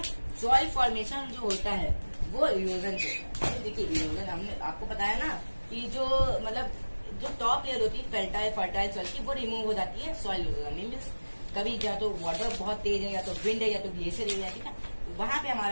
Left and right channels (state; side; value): inverted; both; correlation -1.00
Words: सॉइल फॉर्मेशन जो होता है वो इरोजन से होता है। देखिए, इरोजन हमने आपको बताया ना कि जो मतलब जो टॉप लेयर होती है फर्टाइल सॉइल की, वो रिमूव हो जाती है सॉइल इरोजन। मीन्स कभी या तो वाटर बहुत तेज है, या तो विंड है, या तो ग्लेशियर एरिया। ठीक है, तो वहां पे